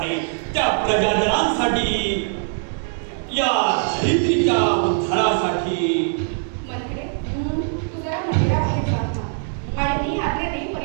त्या प्रजाजनांसाठी या धरित्रीच्या उद्धारासाठी मंत्रे, तू जरा मंदिराबाहेर जाऊन थांब आणि मी आज्ञा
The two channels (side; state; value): left; silent; 64 dB below the other